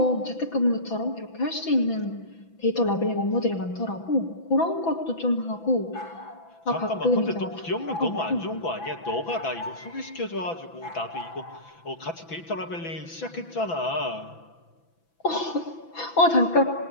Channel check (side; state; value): right; late; 6.0 ms